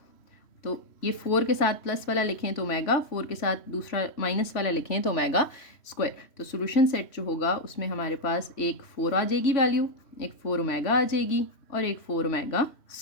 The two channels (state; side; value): late; right; 3.1 ms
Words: तो ये 4 के साथ प्लस वाला लिखें तो ओमेगा, 4 के साथ दूसरा माइनस वाला लिखें तो ओमेगा स्क्वायर। तो सोल्यूशन सेट जो होगा उसमें हमारे पास एक 4 आ जाएगी वैल्यू, एक 4 ओमेगा आ जाएगी और एक 4 ओमेगा